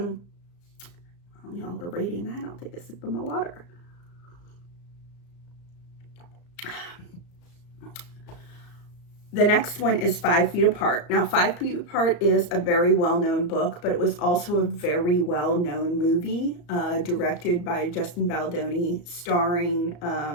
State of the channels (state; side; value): late; right; 34 ms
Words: While y'all are reading that, I'll take a sip of my water. The next one is 5 Feet Apart. Now, 5 Feet Apart is a very well-known book, but it was also a very well-known movie, directed by Justin Baldoni, starring,